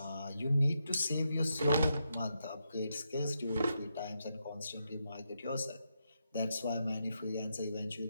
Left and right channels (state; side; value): inverted; both; correlation -0.83